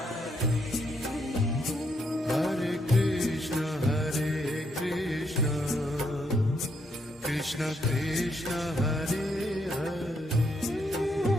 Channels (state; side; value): normal; both; correlation 0.75